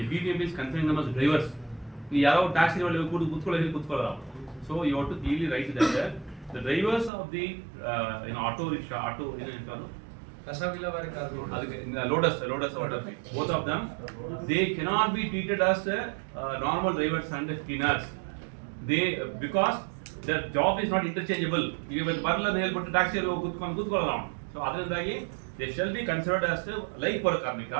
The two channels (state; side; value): drops out; left; at 7.1 s